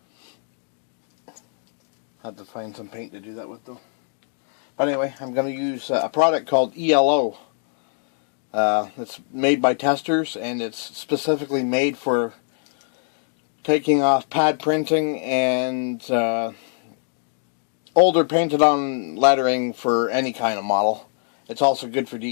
Had to find some paint to do that with though. But anyway, I'm going to use a product called ELO. It's made by Testors, and it's specifically made for taking off pad printing and older painted on lettering for any kind of model. It's also good for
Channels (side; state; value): right; silent; 63 dB below the other